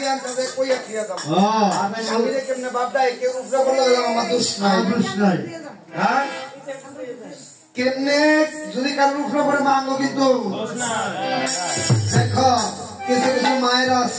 কেমনে বাপটা কেউ উপরে বললো আমার দোষ নাই হ্যাঁ কেমনে যদি কারোর উপরে পরে মাঙ্গো কিন্তু দেখো কিছু কিছু মায়েরা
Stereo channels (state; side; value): identical; both; correlation 1.00